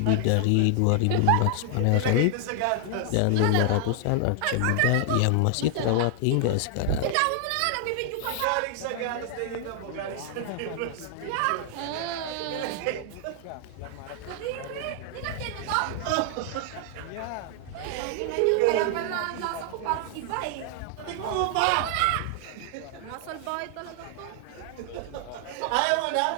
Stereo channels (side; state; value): both; different; correlation 0.00